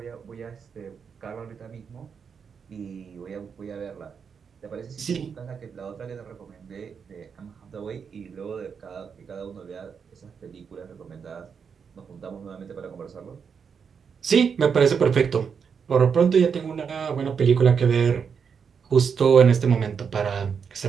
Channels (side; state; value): left; quieter; 6.5 dB